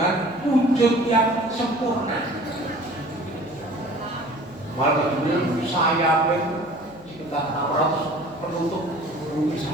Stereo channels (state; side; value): noise; left; hum, 24 dB below the sound